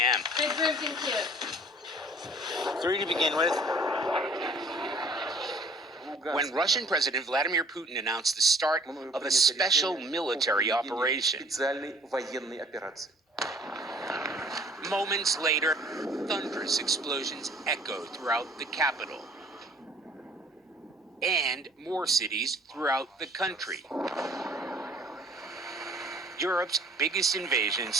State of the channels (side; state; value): both; normal; correlation 0.52